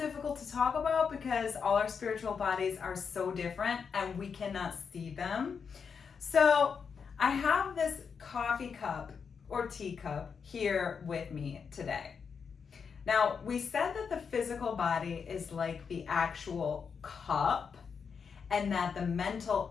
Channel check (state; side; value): quieter; right; 6.1 dB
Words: to talk about because all our spiritual bodies are so different and we cannot see them. So I have this coffee cup or teacup here with me today. Now, we said that the physical body is like the actual cup and that the mental,